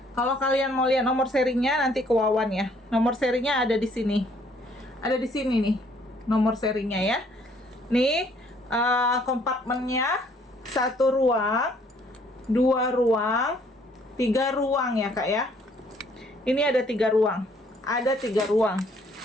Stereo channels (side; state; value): both; normal; correlation 0.63